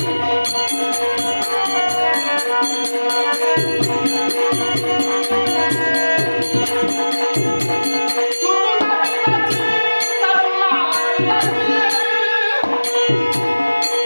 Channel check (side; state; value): both; inverted; correlation -1.00